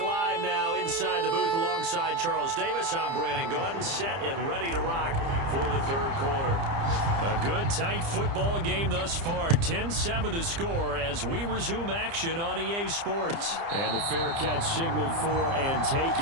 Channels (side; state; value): left; late; 30 ms